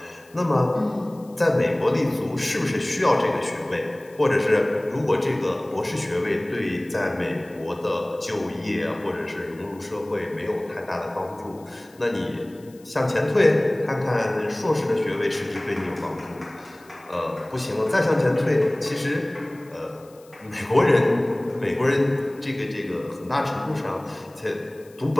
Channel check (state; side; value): noise; left; hiss, 28 dB below the sound